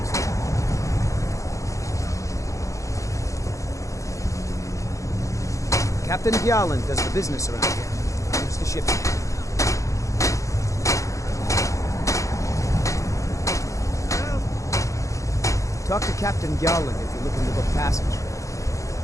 man. Captain Gallon does the business around here. I'm just a ship's man. Talk to Captain Gallon if you're looking to book passage.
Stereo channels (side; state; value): right; late; 0.15 ms